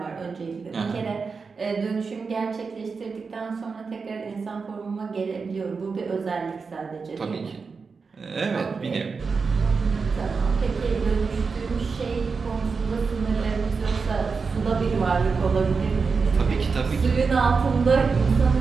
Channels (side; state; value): left; quieter; 4.9 dB